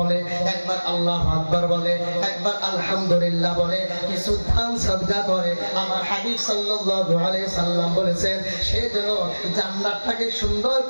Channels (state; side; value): inverted; both; correlation -1.00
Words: একবার আল্লাহু আকবার বলে, একবার আলহামদুলিল্লাহ বলে, কিছু দান সাদকা করে, আমার হাবিব সাল্লাল্লাহু আলাইহি সাল্লাম বলেছেন সে যেন জান্নাতটাকে সুন্দর